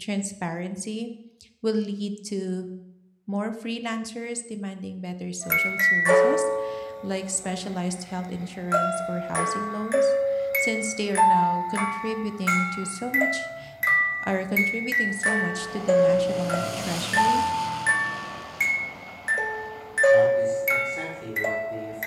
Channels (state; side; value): identical; both; correlation 1.00